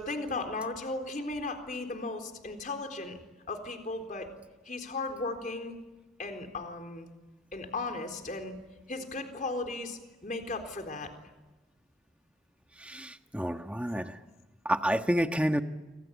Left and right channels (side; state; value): both; normal; correlation 0.61